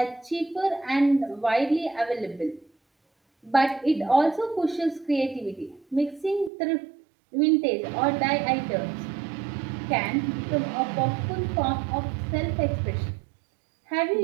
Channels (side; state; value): left; drops out; at 6.5 s